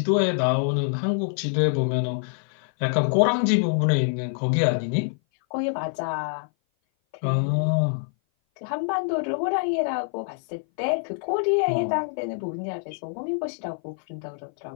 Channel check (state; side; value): silent; right; 57 dB below the other